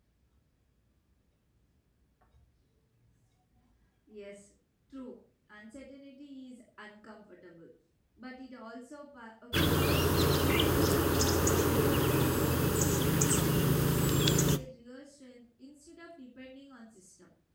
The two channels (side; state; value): both; identical; correlation 1.00